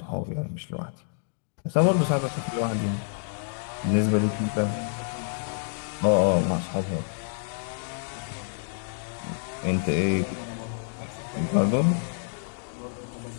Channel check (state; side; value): silent; right; digital silence